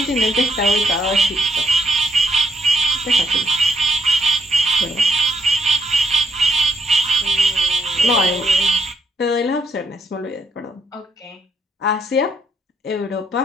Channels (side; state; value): both; normal; correlation 0.76